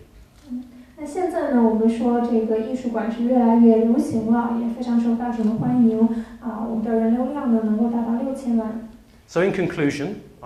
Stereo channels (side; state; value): both; identical; correlation 1.00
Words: 那现在呢，我们说这个艺术馆是越来越流行了，也非常受大众的欢迎啊。我们的人流量呢能够达到6000万。So in conclusion,